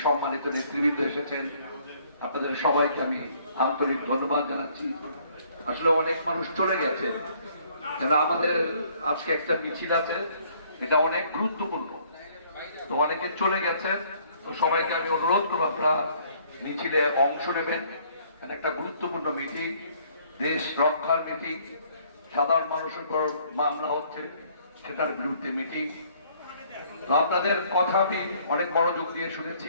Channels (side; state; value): both; inverted; correlation -0.62